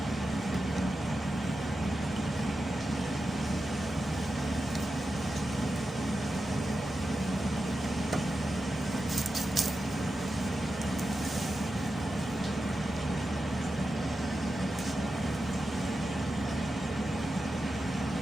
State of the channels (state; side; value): normal; both; correlation 0.90